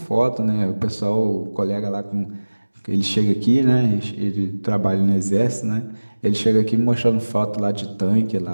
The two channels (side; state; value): both; inverted; correlation -1.00